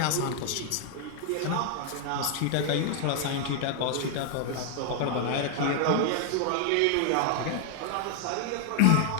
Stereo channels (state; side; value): different; both; correlation 0.00